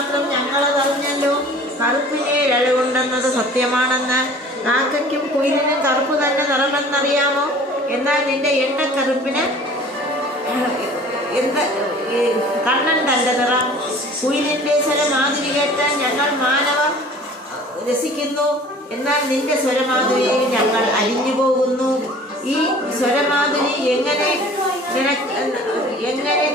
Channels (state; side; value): normal; both; correlation 0.47